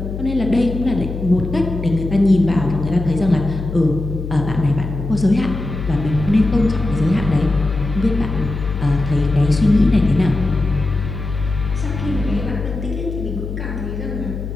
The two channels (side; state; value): left; noise; hum, 6 dB below the sound